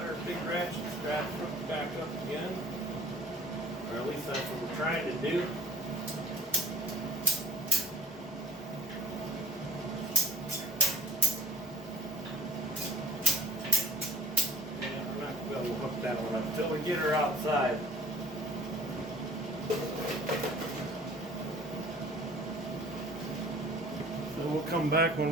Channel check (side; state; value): both; normal; correlation 0.50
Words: Big ratchet strap hooked back up again, or at least that's what we're trying to do. And we're not going to be able to hook that one up until we get her outside. So we'll come back when